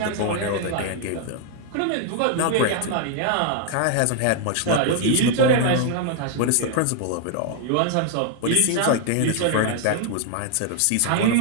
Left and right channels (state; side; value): different; both; correlation 0.00